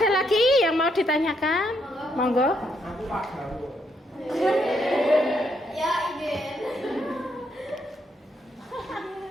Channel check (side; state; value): both; normal; correlation 0.75